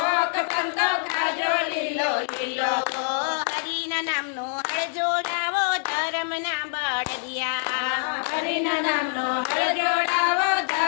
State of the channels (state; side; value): silent; right; 62 dB below the other